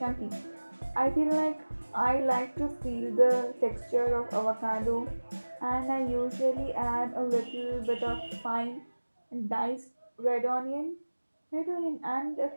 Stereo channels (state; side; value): inverted; both; correlation -1.00